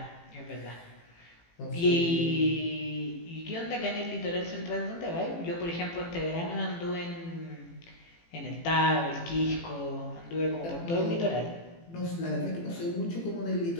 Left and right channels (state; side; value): late; right; 18 ms